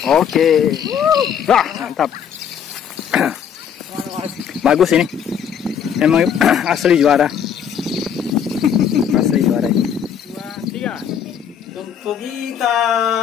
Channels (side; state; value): right; quieter; 8.1 dB